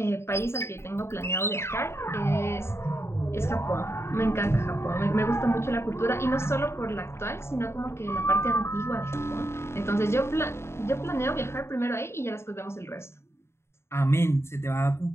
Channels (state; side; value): late; right; 0.13 ms